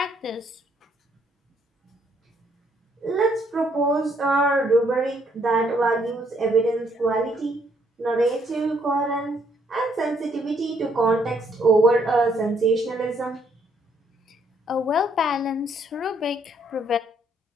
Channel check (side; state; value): both; normal; correlation 0.69